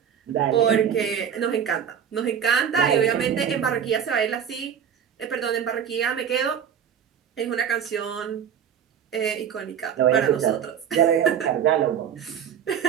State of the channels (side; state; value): left; quieter; 8.4 dB